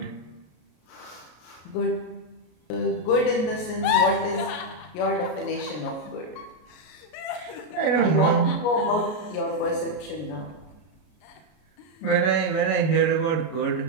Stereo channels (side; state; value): right; late; 33 ms